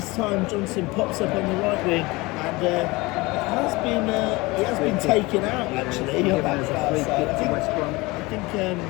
time Johnson pops up on the right wing, and it has been taken out actually on that far side. I think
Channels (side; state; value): right; quieter; 22.8 dB